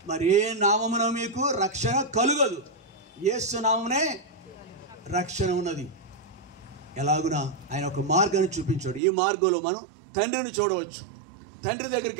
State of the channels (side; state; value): left; drops out; at 9.0 s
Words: మరి ఏ నామమున మీకు రక్షణ కలుగదు, యేసు నామమునే రక్షణ ఉన్నది. ఎలాగునా ఆయన ఒక మార్గాన్ని చూపించాడు. ఈ మార్గంలో మనం తండ్రిని చూడవచ్చు, తండ్రి దగ్గరికి